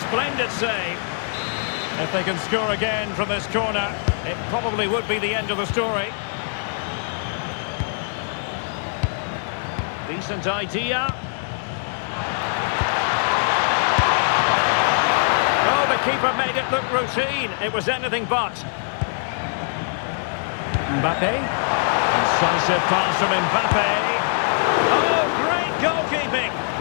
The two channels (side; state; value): right; silent; digital silence